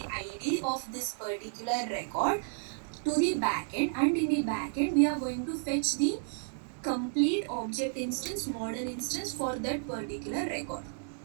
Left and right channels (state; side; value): silent; left; digital silence